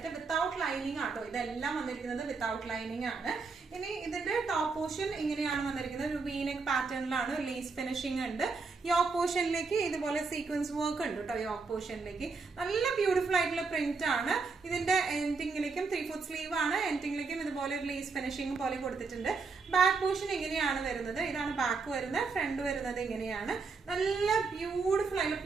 വിത്തൗട്ട് ലൈനിങ് ആട്ടോ. ഇതെല്ലാം വന്നിരിക്കുന്നത് വിത്തൗട്ട് ലൈനിങ് ആണ്. ഇനി ഇതിന്റെ ടോപ്പ് പോർഷൻ ഇങ്ങനെയാണ് വന്നിരിക്കുന്നത്. ഒരു വീനെക്ക് പാറ്റേണിലാണ്, ലേസ് ഫിനിഷിംഗ് ഉണ്ട്. യോക്ക് പോർഷനിലേക്ക് ഇതുപോലെ സീക്വൻസ് വർക്ക് ഉണ്ട് കേട്ടോ. യോക്ക് പോർഷനിലേക്ക് നല്ല ബ്യൂട്ടിഫുൾ ആയിട്ടുള്ള പ്രിന്റ് ആണ്. ഇതിന്റെ എൻഡിങ്ങിലേക്കും 3/4 സ്ലീവ് ആണ്. എൻഡിങ്ങിലേക്കും ഇതുപോലെ ഒരു ലേസ് ഫിനിഷിംഗ് പോലെ കൊടുത്തിട്ടുണ്ട്. ബാക്ക് പോർഷൻ ഇങ്ങനെയാണ് വരുന്നത്. ഇതാണ് ബാക്ക് വരുന്നത്. ഫ്രണ്ട് വരുന്നത് ഇങ്ങനെയാണ്. നല്ല ബ്യൂട്ടിഫുൾ ആയിട്ടുള്ള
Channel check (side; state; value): left; quieter; 4.5 dB